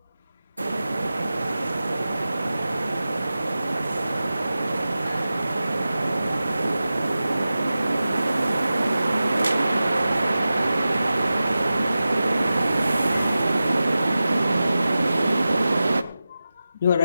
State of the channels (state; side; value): inverted; both; correlation -0.94